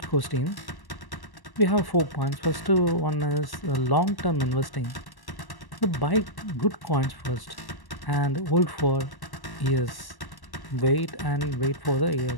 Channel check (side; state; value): right; late; 1.1 ms